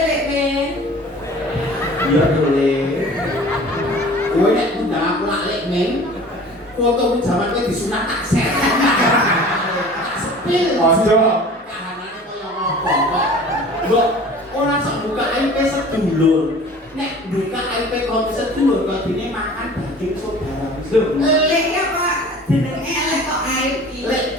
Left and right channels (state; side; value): normal; both; correlation 0.44